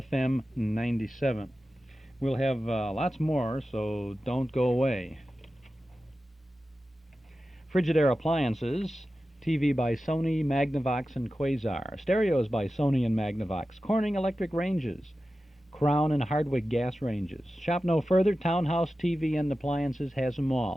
97. We'll have lots more, so don't go away. Frigidaire Appliances, TV by Sony, Magnavox, and Quasar. Stereos by Sony and Magnavox. Corning Electric Ranges. Crown and Hardwick Gas Ranges. Shop no further. Townhouse TV and Appliances has them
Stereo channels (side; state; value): both; normal; correlation 0.94